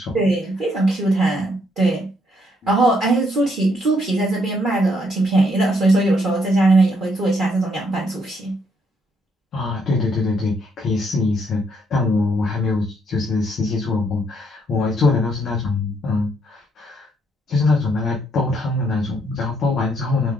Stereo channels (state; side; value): normal; both; correlation 0.72